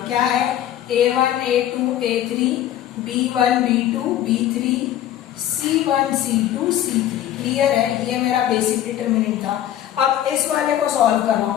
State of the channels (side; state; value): right; quieter; 11.9 dB